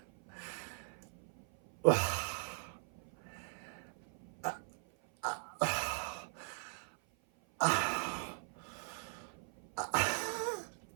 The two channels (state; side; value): silent; left; 51 dB below the other